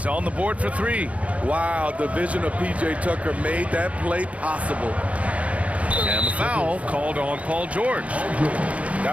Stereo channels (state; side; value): late; left; 0.065 ms